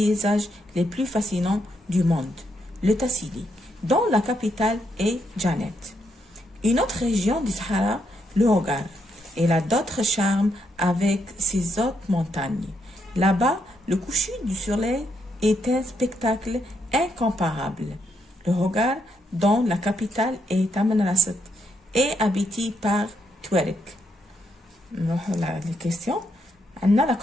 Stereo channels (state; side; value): normal; both; correlation 0.78